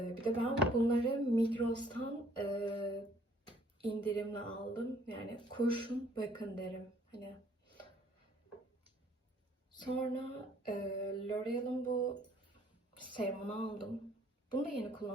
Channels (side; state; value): both; normal; correlation 0.60